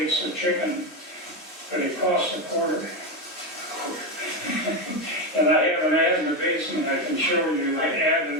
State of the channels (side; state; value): both; normal; correlation 0.12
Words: of chicken, but it cost a quarter. And I have an ad in the basement I can show you, like ad